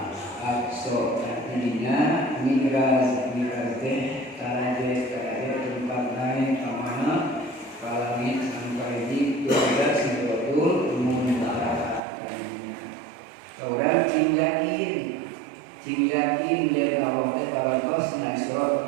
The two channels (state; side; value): drops out; left; at 12.0 s